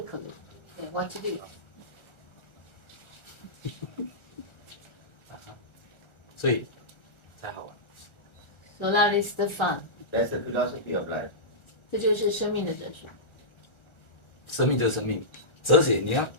then what to do? 所以才好玩。 So that is the fun. That's the philosophy of life. 这就是生命的哲学。生命就是生命，哲学你看，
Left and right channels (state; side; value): late; right; 1.4 ms